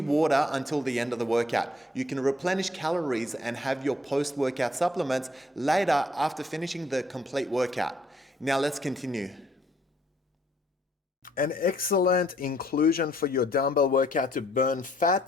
until the end of the workout. You can replenish calories and have your post-workout supplements later after finishing the complete workout. Now let's continue. An excellent inclusion for your dumbbell workout to burn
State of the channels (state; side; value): normal; both; correlation 0.66